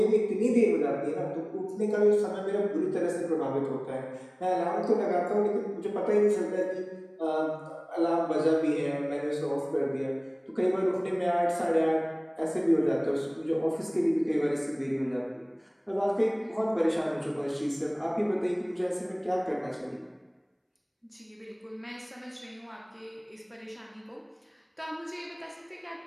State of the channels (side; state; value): both; identical; correlation 1.00